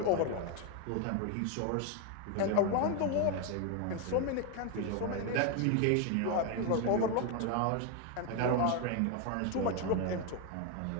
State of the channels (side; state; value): both; different; correlation 0.01